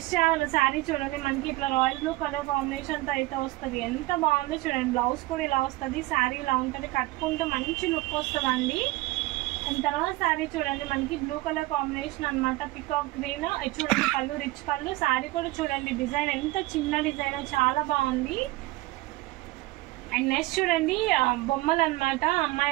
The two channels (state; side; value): quieter; left; 19.8 dB